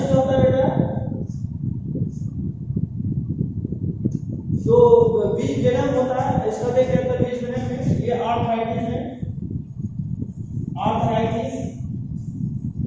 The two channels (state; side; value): identical; both; correlation 1.00